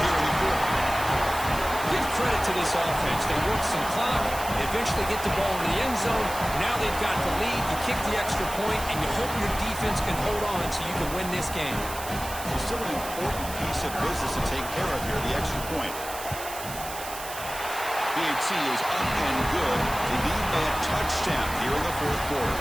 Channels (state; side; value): noise; right; hiss, 10 dB below the sound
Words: here in the fourth. Give credit to this offense. They work some clock. They eventually get the ball in the end zone. Now they've got the lead. You kick the extra point, and you hope your defense can hold on so you can win this game. It's still an important piece of business to take care of here, the extra point. BAT is up and good. They need a touchdown here in the fourth quarter.